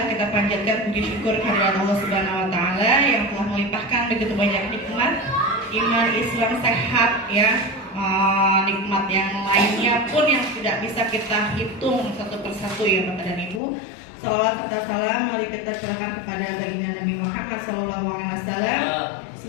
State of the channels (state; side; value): drops out; right; at 13.6 s